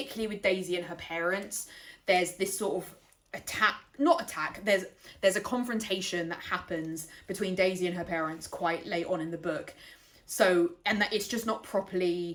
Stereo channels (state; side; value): identical; both; correlation 1.00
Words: with Daisy and her parents. There's this sort of there's a confrontation that happens between Daisy and her parents quite late on in the book. So, and that it's just not